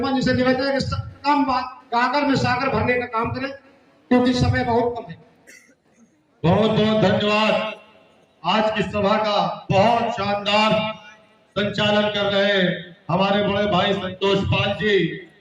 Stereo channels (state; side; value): identical; both; correlation 1.00